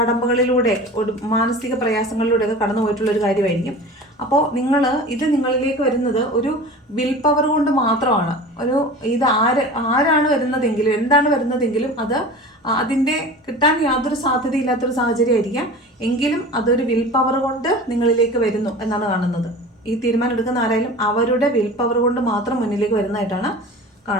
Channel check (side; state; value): both; normal; correlation 0.36